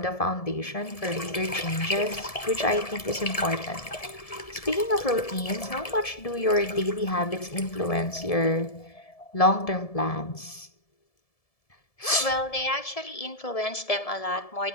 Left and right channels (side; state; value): right; late; 1.7 ms